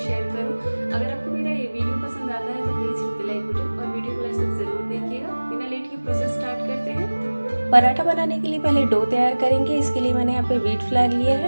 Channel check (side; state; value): both; inverted; correlation -1.00